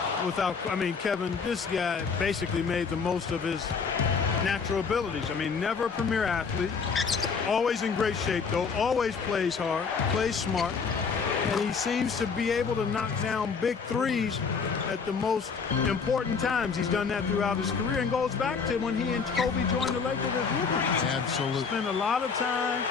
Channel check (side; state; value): right; quieter; 5.5 dB